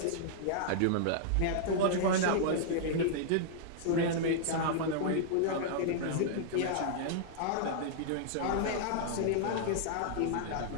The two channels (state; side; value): different; both; correlation -0.02